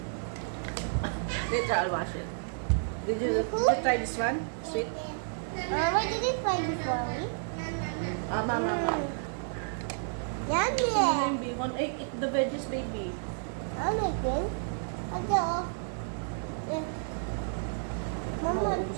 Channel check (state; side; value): silent; left; digital silence